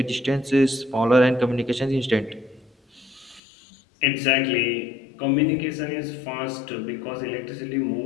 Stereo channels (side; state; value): right; drops out; at 3.4 s